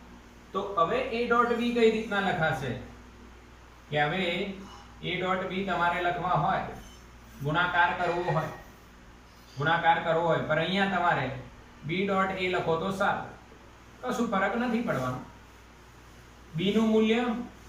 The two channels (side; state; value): both; identical; correlation 1.00